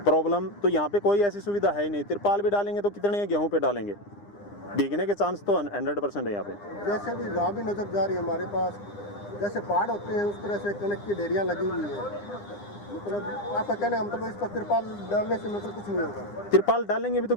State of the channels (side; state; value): right; late; 9.9 ms